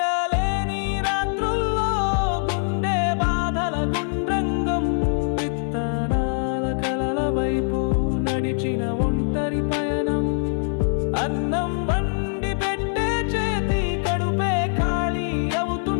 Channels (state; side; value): silent; right; 58 dB below the other